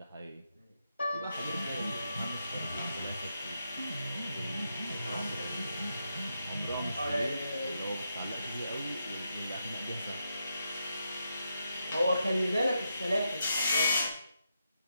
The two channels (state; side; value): inverted; both; correlation -0.83